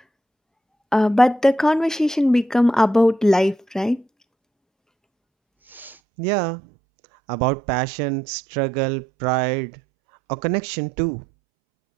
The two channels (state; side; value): drops out; left; at 6.0 s